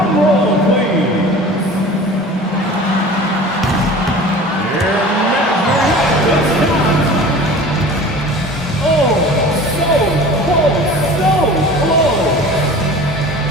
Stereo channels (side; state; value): both; normal; correlation 0.40